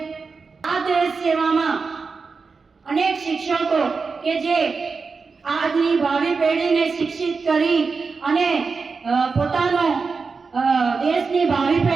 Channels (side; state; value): left; quieter; 4.7 dB